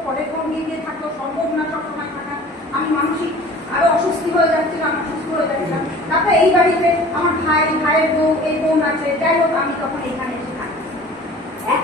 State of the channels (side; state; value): both; normal; correlation 0.45